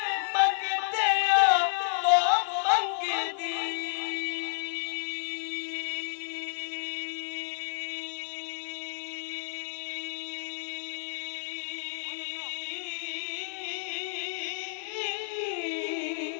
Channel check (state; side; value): silent; right; digital silence